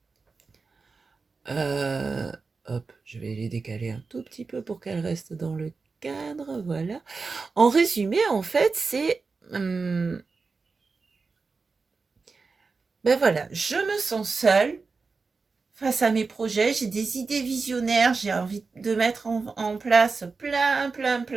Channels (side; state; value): left; quieter; 4.4 dB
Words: hop, je vais les décaler un tout petit peu pour qu'elles restent dans le cadre, voilà. En résumé, en fait, c'est ben voilà, je me sens seule face à mes projets, j'ai des idées visionnaires, j'ai envie de mettre en place plein